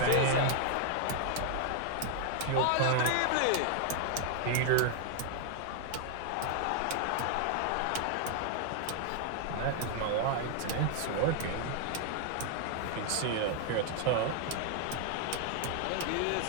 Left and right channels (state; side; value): different; both; correlation 0.00